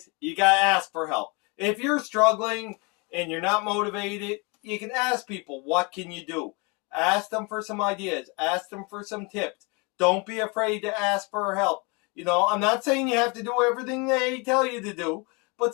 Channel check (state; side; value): quieter; right; 30.0 dB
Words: you got to ask for help. If you're struggling and you're not motivated, you can ask people, what can you do? Ask them for some ideas. Ask them for some tips. Don't be afraid to ask for help. You know, I'm not saying you have to do everything they tell you to do, but